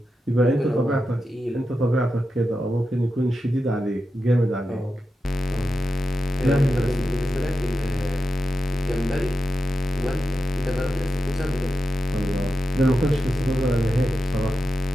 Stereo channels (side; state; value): both; normal; correlation 0.90